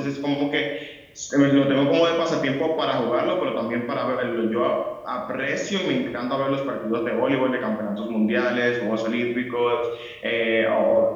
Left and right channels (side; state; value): both; identical; correlation 1.00